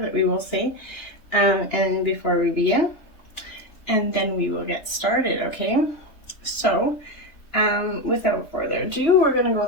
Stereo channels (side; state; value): right; late; 2.9 ms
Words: we will say and before we begin, and then we will get started, okay? So without further ado, we're going to go